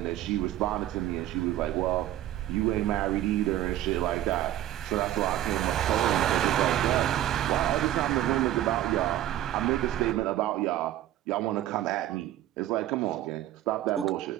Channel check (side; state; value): left; quieter; 13.2 dB